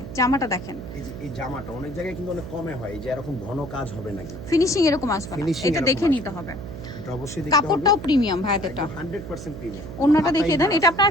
জামাটা দেখেন, এই জামাটা অনেক জায়গায় কিন্তু অনেক কমে হয়, এই যে এরকম ঘন কাজ হবে নাকি, ফিনিশিং এরকম আসবে না, Finishing এটা দেখে এরকম নিতে হবে। এটা অবশ্যই দেখতে হবে। কাপড়টাও প্রিমিয়াম ভাই, এটা 100% প্রিমিয়াম। ওন্নাটা দেখিয়ে দেন, এটা আপনার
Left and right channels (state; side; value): noise; right; hum, 11 dB below the sound